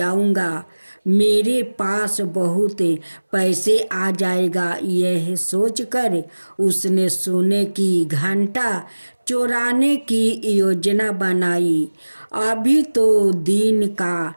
मेरे पास बहुत पैसे आ जाएगा। यह सोचकर उसने सोने की घंटा चुराने की योजना बनाई। अभी तो दिन का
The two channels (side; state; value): both; inverted; correlation -1.00